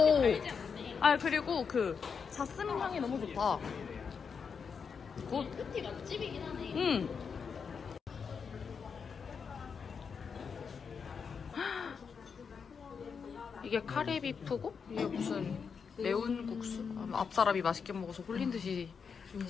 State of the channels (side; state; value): right; quieter; 6.1 dB